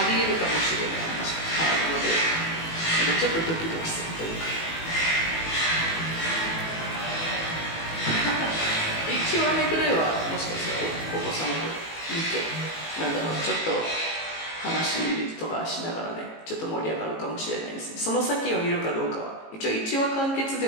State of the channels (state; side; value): late; right; 18 ms